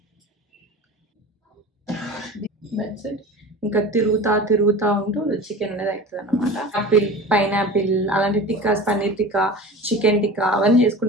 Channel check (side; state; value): both; normal; correlation 0.35